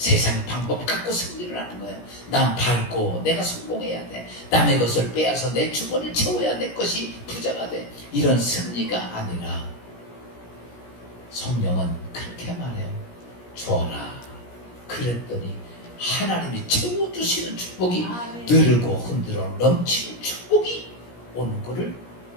방법 갖고 승리를 하는 거예요. 난 밝고 내가 성공해야 돼. 남의 것을 빼앗아 내 주머니를 채워야 내 것이 부자가 돼. 이런 승리가 아니라 성령은 그렇게 말해요. 줘라. 그랬더니 하나님이 채워주시는 축복이 아멘. 느르고 흔들어 넘치는 축복이 오는 것을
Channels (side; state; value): right; late; 17 ms